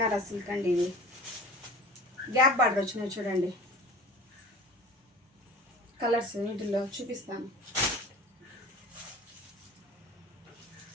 సిల్క్ అండి. ఇవి గ్యాప్ బార్డర్ వచ్చినాయి చూడండి. కలర్స్ వీటిల్లో చూపిస్తాను.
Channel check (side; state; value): both; normal; correlation 0.41